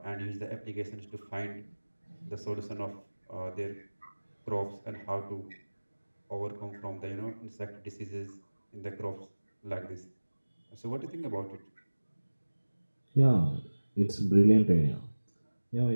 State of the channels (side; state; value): both; inverted; correlation -1.00